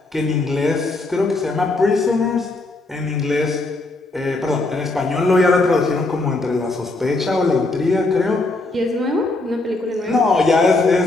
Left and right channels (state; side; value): quieter; right; 3.1 dB